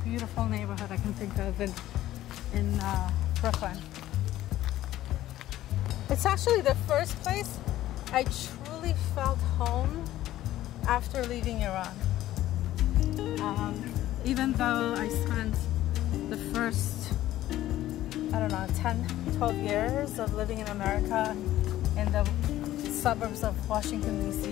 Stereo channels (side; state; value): right; quieter; 14.2 dB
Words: beautiful neighborhood I can think of in Brooklyn. It's actually the first place I truly felt home after leaving Iran. Even though I spent the first, I don't know, 10, 12 years of living in America in the suburbs of Washington,